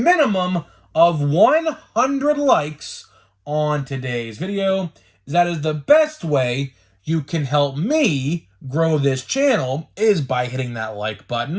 of 100 likes on today's video? That is the best way you can help me grow this channel, is by hitting that like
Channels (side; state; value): both; identical; correlation 1.00